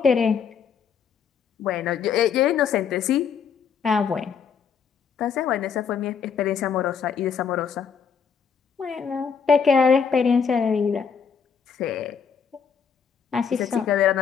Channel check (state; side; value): quieter; right; 6.6 dB